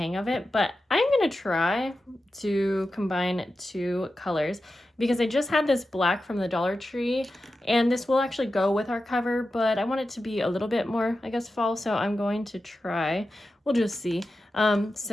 of it, but I'm going to try to combine two colors because I just had this black from the Dollar Tree and this will actually go with our cover, but I want it to be a little bit more, I guess, fall, so I'm going to try. We'll just see.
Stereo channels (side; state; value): both; normal; correlation 0.92